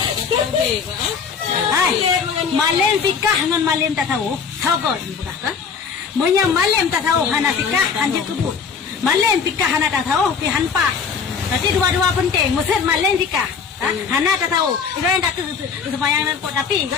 Hai, malam fikah dengan malam tak tahu. Tahu kau bukan kan? Maya malam tak tahu hana fikah anjir kebut. Malam fikah hana tak tahu pi hanpa. Berarti dua-dua penting. Maksud malam fikah. Hana tak tahu. Itu yang tak sembahyang dan pot tapi kau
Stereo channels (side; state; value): right; quieter; 6.1 dB